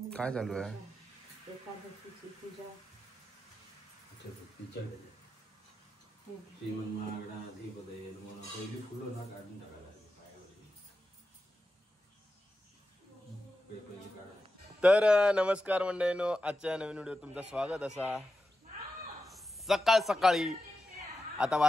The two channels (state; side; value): normal; both; correlation 0.91